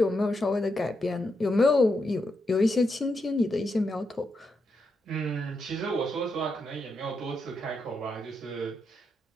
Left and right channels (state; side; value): normal; both; correlation 0.83